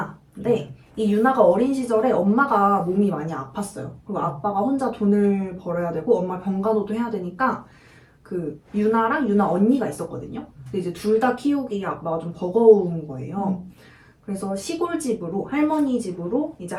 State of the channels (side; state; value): both; identical; correlation 1.00